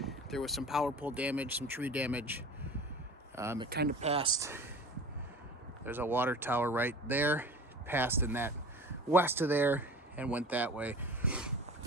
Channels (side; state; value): both; normal; correlation 0.38